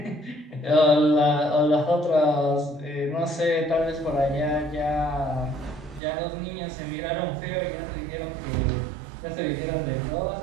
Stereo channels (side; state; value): left; drops out; at 6.0 s